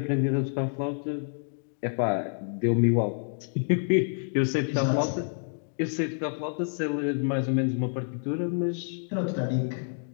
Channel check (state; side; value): silent; right; digital silence